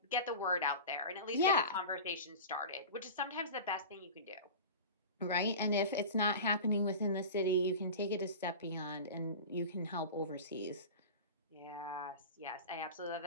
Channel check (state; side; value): inverted; both; correlation -0.32